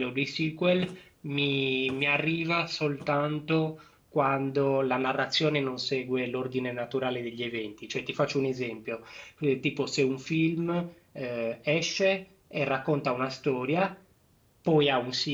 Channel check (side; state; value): both; identical; correlation 1.00